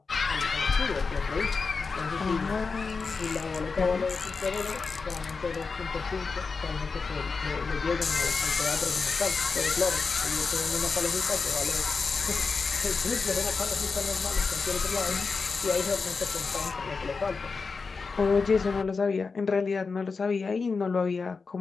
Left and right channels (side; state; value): right; quieter; 4.7 dB